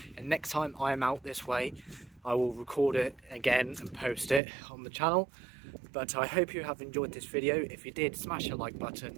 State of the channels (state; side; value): drops out; left; at 4.4 s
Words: and next time I am out this way I will record it again and post it on the channel. But I hope you have enjoyed this video. If you did, smash the like